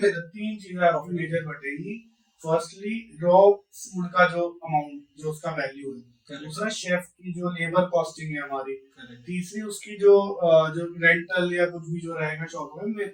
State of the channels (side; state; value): both; identical; correlation 1.00